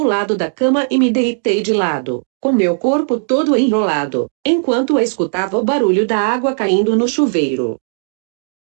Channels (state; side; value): silent; left; digital silence